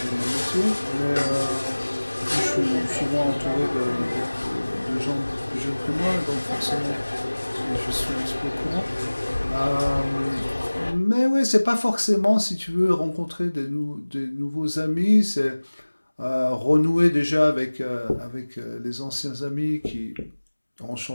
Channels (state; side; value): inverted; both; correlation -1.00